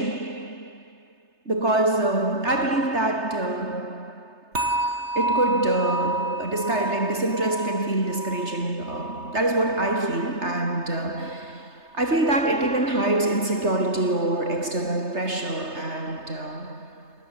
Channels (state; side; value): late; left; 3.3 ms